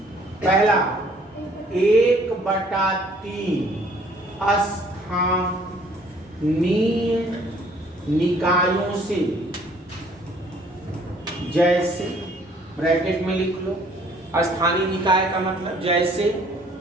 पहला 1/3 स्थानीय निकायों से, जैसे ब्रैकेट में लिख लो। स्थानीय निकाय का मतलब जैसे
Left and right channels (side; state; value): both; normal; correlation 0.59